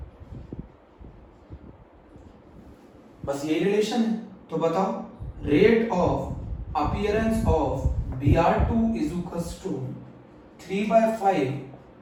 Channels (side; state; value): both; identical; correlation 1.00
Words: बस यही रिलेशन है। तो बताओ rate of appearance of Br2 is equals to 3/5